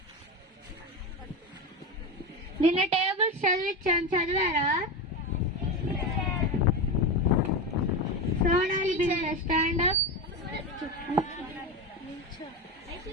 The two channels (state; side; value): normal; both; correlation 0.18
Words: నిన్న టేబుల్స్ చదివించాను, చదివారా? సోనాలి బిందె. Stand up.